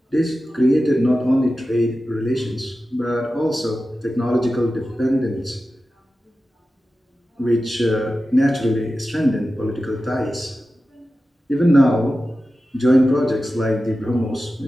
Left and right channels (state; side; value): normal; both; correlation 0.93